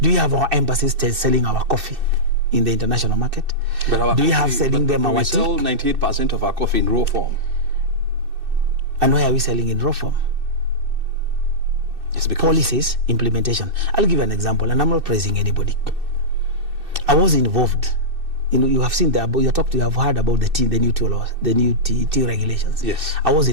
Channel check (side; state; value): left; late; 2.6 ms